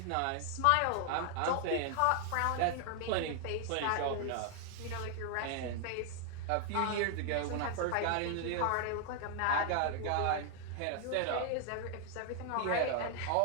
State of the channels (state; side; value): different; both; correlation 0.00